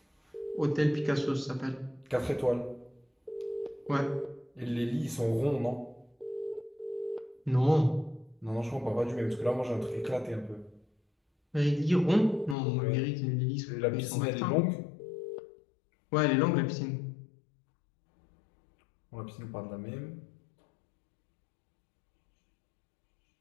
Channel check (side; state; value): right; drops out; at 12.6 s